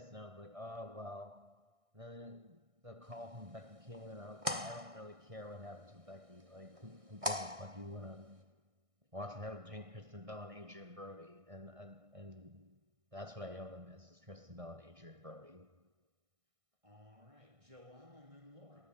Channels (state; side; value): late; left; 1.6 ms